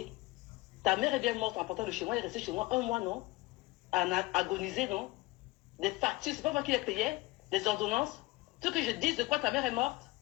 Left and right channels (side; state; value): right; quieter; 21.4 dB